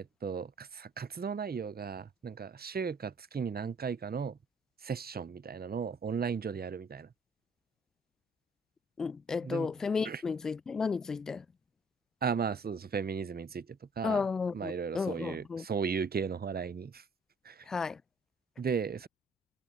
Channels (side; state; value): both; normal; correlation 0.59